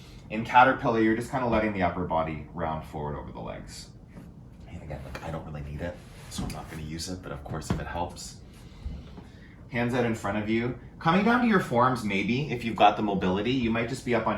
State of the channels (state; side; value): identical; both; correlation 1.00